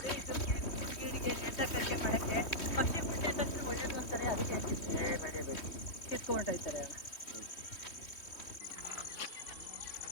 ಪಕ್ಷಿ ಮುಟ್ಟೆ ತಕ್ಷಣ ಒಳ್ಳೇದು ಅಂತಾರೆ, ಅದಕ್ಕೆ ಕಿತ್ಕೊಂಡೋಗ್ತಾರೆ.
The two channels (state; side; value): late; right; 3.1 ms